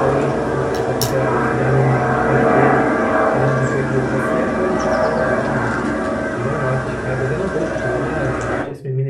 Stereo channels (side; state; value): both; identical; correlation 1.00